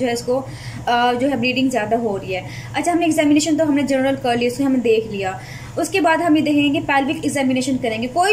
है इसको जो है ब्लीडिंग ज़्यादा हो रही है। अच्छा, हमने एग्जामिनेशन तो हमने जनरल कर लिया, उसको हमने देख लिया। उसके बाद हम ये देखेंगे पेल्विक एग्जामिनेशन करेंगे। कोई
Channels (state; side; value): identical; both; correlation 1.00